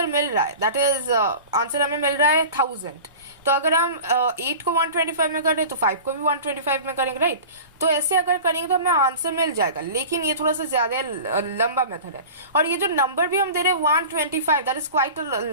मिल रहा है, दैट इज आंसर हमें मिल रहा है 1000। तो अगर हम 8 को 125 में कर रहे तो 5 को भी 125 में करेंगे, राइट। तो ऐसे अगर करेंगे तो हमें आंसर मिल जाएगा, लेकिन ये थोड़ा सा ज्यादा लंबा मेथड है। और ये जो नंबर भी हम दे रहे हैं 125, that is quite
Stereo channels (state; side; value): inverted; both; correlation -0.36